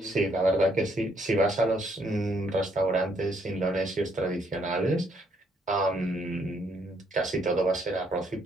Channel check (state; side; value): normal; both; correlation 0.71